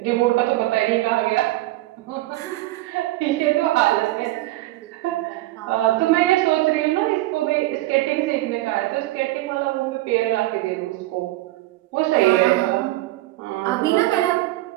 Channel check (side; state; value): left; quieter; 17.8 dB